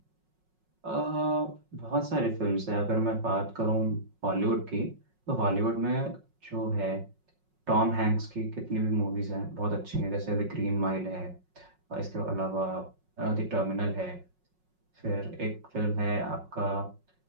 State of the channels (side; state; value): left; late; 5.4 ms